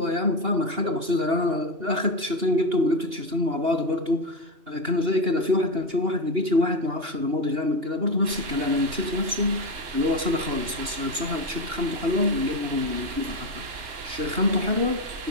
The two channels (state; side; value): late; left; 2.8 ms